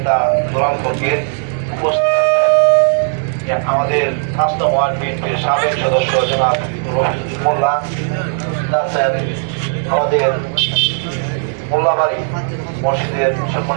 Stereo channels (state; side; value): silent; left; 68 dB below the other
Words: দুলাল ফকির, উপস্থিত আছেন আমাদের ৫ নং ওয়ার্ড বিএনপির সাবেক সদস্য জনাব রফিজুল মোল্লা, উপস্থিত আছেন আমাদের মোল্লাবাড়ি মসজিদের